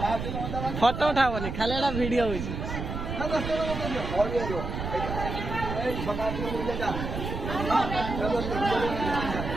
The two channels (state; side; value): noise; right; rumble, 5 dB below the sound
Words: फोटो उठावनी खाली एटा वीडियो होइछ।